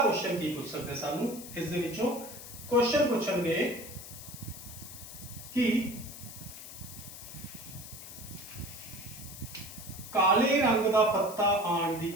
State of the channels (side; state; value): left; noise; hiss, 13 dB below the sound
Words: ਕੀ ਪੁੱਛ ਸਕਦੇ ਸਾਨੂੰ ਇਸ ਦੇ ਵਿੱਚੋਂ, ਕੁਐਸਚਨ ਪੁੱਛਣਗੇ ਕਿ ਕਾਲੇ ਰੰਗ ਦਾ ਪੱਤਾ ਆਉਣ ਦੀ